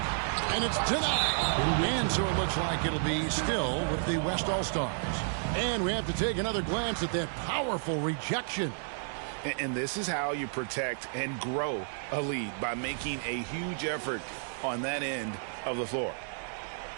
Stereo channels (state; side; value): silent; left; digital silence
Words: And it's denied. And so it looks like it'll be still with the West All-Stars. And we have to take another glance at that powerful rejection. And this is how you protect and grow a lead, by making a huge effort on that end of the floor.